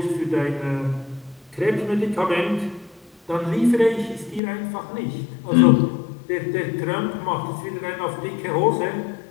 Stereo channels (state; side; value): drops out; right; at 4.4 s